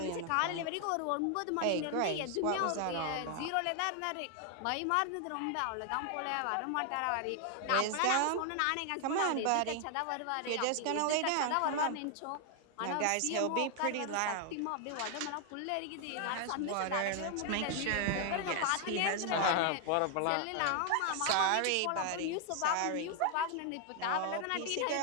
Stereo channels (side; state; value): both; different; correlation 0.00